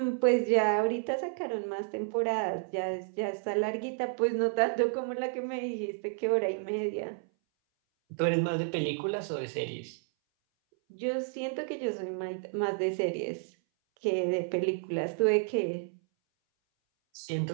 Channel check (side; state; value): left; silent; 57 dB below the other